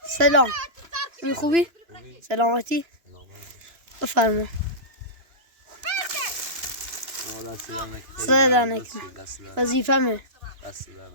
سلام. این خوبی؟ سلامتی؟ بفرما. صدا نکنه. وظیفه‌مه.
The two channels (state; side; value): late; left; 2.9 ms